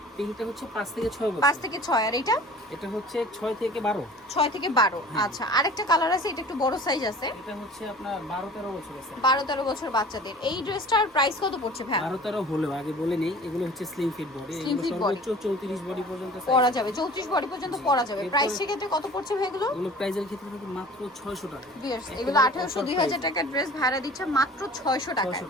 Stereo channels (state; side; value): normal; both; correlation 0.44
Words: পিঙ্কটা হচ্ছে 5 থেকে 6 বছর। 5 থেকে 6। আর এটা হচ্ছে 6 থেকে 12। 6 থেকে 12। আচ্ছা, আরেকটা কালার আছে, এটা একটু বড় সাইজ আছে। এটা হচ্ছে আপনার 12-13 বছর আছে। 12-13 বছর বাচ্চাদের। এই ড্রেসটার প্রাইস কত পড়ছে ভাই? 12-13 হলেও আগে বলে নেই, এগুলো হচ্ছে স্লিম ফিট বডি। এগুলো সর্বোচ্চ 34 বডি পর্যন্ত পরা যাবে, 34 বডি পর্যন্ত পরা যাবে। প্রাইস ক্ষেত্রে কত পড়ছে ভাই এগুলো? এগুলো প্রাইসের ক্ষেত্রে থাকে মাত্র 600 টাকা। এগুলো 1800-2000 টাকার ড্রেস ভাড়া দিচ্ছে মাত্র 600 টাকা।